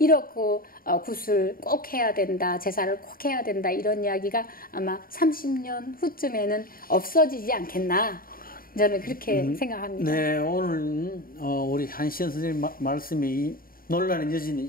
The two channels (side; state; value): right; late; 0.42 ms